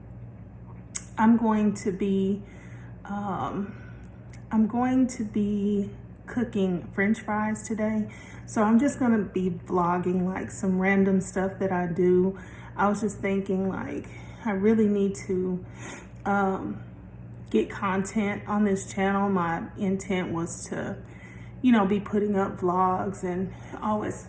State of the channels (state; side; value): identical; both; correlation 1.00